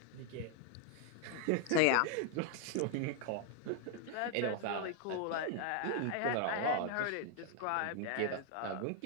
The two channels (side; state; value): both; different; correlation 0.00